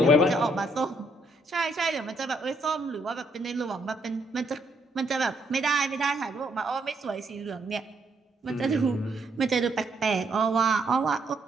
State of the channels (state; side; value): normal; both; correlation 0.73